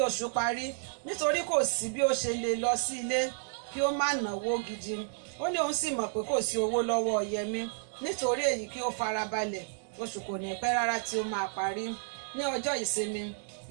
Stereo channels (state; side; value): silent; left; 57 dB below the other